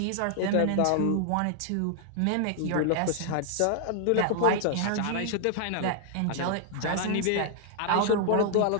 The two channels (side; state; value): both; different; correlation 0.00